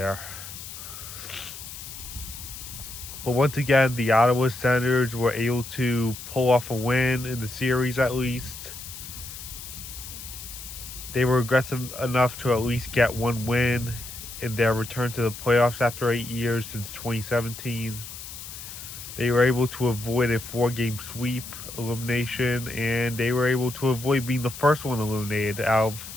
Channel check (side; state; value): left; noise; hiss, 12 dB below the sound